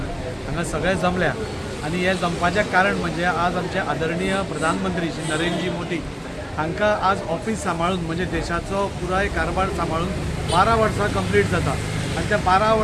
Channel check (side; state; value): both; identical; correlation 1.00